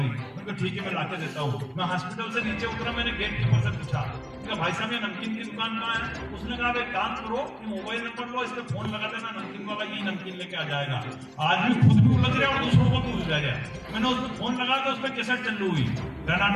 उनको ठीक है मैं लाके देता हूँ। मैं हॉस्पिटल से नीचे उतरा, मैंने गेट कीपर से पूछा भाई साहब ये नमकीन की दुकान कहाँ है? उसने कहा एक काम करो, मोबाइल नंबर लो, इस पे फोन लगा देना, नमकीन वाला यही नमकीन लेके आ जाएगा। आदमी खुद भी उलझ रहा और दूसरों को भी उलझा गया। मैंने उस पर फोन लगा तो उस पर कैसेट चालू हुई,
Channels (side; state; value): both; identical; correlation 1.00